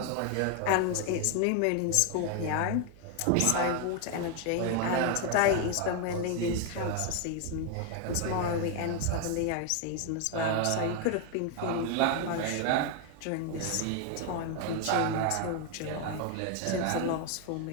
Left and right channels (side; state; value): both; different; correlation 0.01